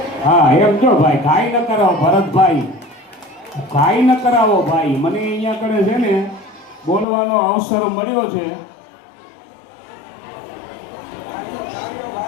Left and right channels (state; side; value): drops out; right; at 7.1 s